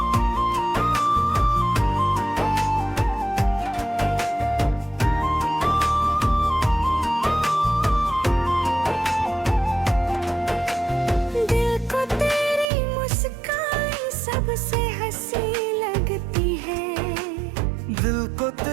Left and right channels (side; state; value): left; drops out; at 12.7 s